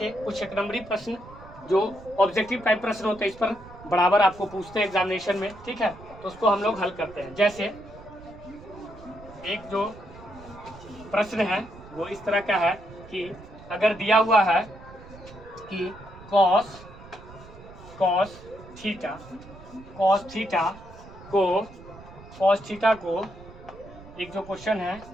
कुछ एक नंबरी प्रश्न जो ऑब्जेक्टिव टाइप प्रश्न होते हैं, इस पर बराबर आपको पूछते हैं एग्जामिनेशन में। ठीक है, तो उसको हम लोग हल करते हैं। जैसे एक जो प्रश्न है वो इस तरह का है कि अगर दिया हुआ है कि cos थीटा को एक जो क्वेश्चन है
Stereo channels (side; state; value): right; noise; rumble, 18 dB below the sound